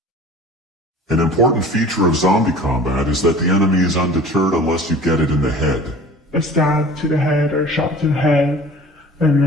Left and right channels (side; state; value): both; normal; correlation 0.43